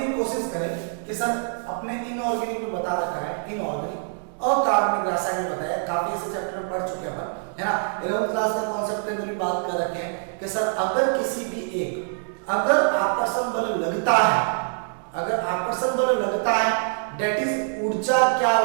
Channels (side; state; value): left; silent; 62 dB below the other